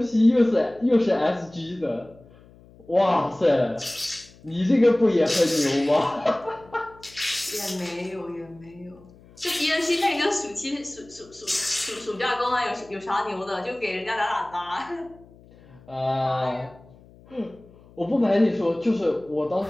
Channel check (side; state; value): left; noise; hum, 25 dB below the sound